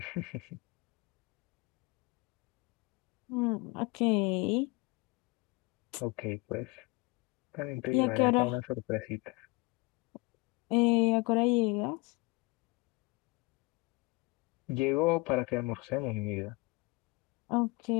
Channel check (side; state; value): right; quieter; 25.7 dB